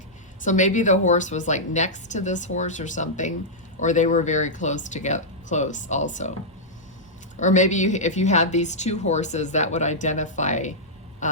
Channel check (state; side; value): normal; both; correlation -0.09